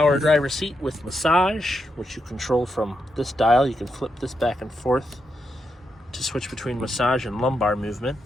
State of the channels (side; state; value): both; normal; correlation 0.83